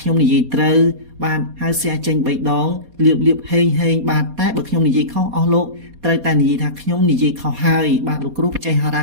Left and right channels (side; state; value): left; late; 4.2 ms